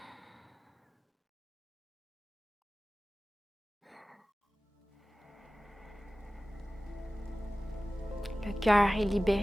Le cœur est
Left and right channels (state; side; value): normal; both; correlation 0.97